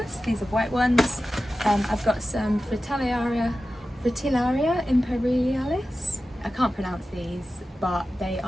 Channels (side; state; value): both; normal; correlation 0.94